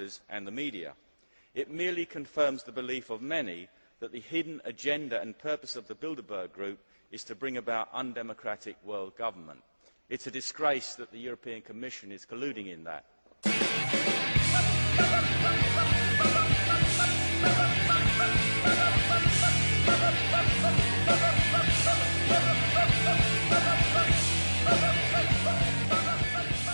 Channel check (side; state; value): both; inverted; correlation -1.00